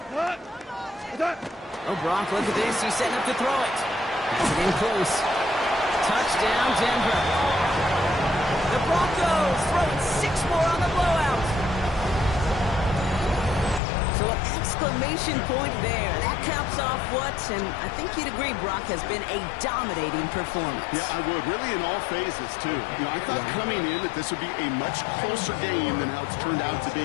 Oh, Brock, look at this. He's setting up to throw it. That's it in close. Touchdown, Denver. The Broncos throwing 6 more on the blowout. So an exclamation point there. That caps off what, and I think you'd agree, Brock, has been a dominating performance. Yeah, I would. Really in all phases, too. You know, I thought coming in that this would be a much closer game than how it's turned out to be.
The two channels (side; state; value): right; drops out; at 13.8 s